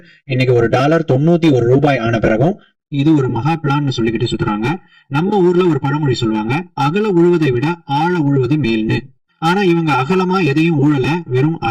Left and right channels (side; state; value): both; identical; correlation 1.00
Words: இன்னைக்கு ஒரு டாலர் 91 ரூபாய் ஆன பிறகும் இது ஒரு மகா பிளான்னு சொல்லிக்கிட்டு சுத்துறாங்க. நம்ம ஊர்ல ஒரு பழமொழி சொல்லுவாங்க, அகல உழுவதை விட ஆழ உழுவது மேல்னு. ஆனா இவங்க அகலமா எதையும் ஊழல, வெறும்